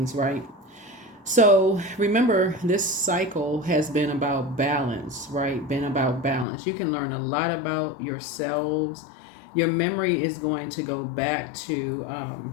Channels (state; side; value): drops out; right; at 6.5 s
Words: right? So remember, this cycle has been about balance, right? Been about balance. You can learn a lot about yourselves. Your memory is going to go back to